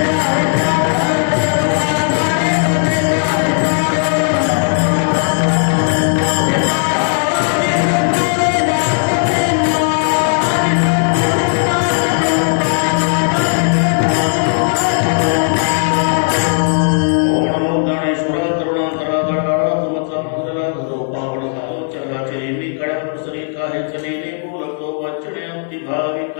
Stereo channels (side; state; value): right; silent; digital silence